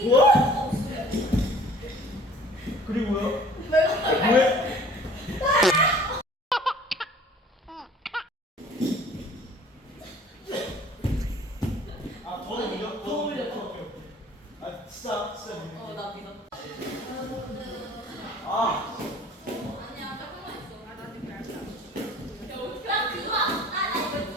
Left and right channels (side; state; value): both; normal; correlation 0.50